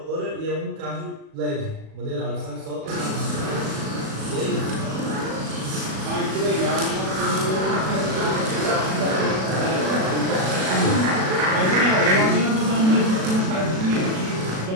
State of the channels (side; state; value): left; late; 37 ms